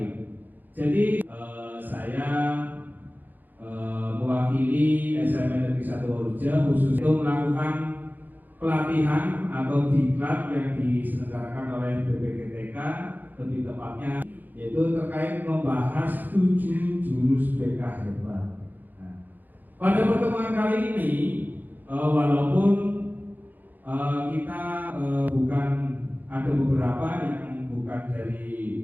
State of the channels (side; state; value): left; late; 0.085 ms